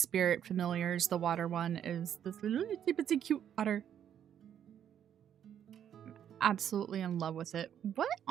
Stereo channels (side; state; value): left; quieter; 9.5 dB